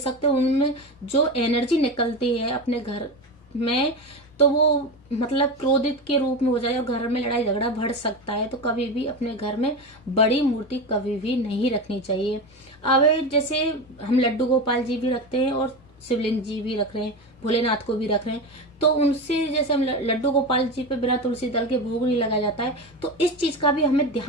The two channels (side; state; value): both; normal; correlation 0.22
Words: उनमें जो एनर्जी निकलती है अपने घर में, तो वो मतलब क्रोधित के रूप में हो जाए और घर में लड़ाई झगड़ा बढ़ सकता है। तो कभी भी अपने घर में बड़ी मूर्ति कभी भी नहीं रखनी चाहिए। अब जैसे हम लड्डू गोपाल जी भी रखते हैं और शिवलिंग जी भी रख रहे हैं, भोलेनाथ को भी रख रहे हैं, तो उनसे जैसे हम लड्डू गोपाल जी पे बिना तुलसी दल के भोग नहीं लगाया जाता है, तो इस चीज का भी हमें